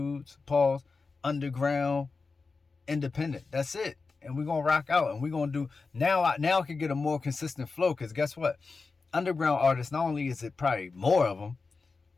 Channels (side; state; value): right; quieter; 4.3 dB